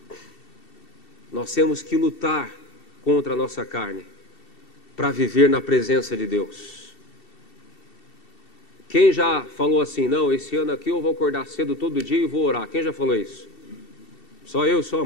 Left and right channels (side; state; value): right; late; 2.7 ms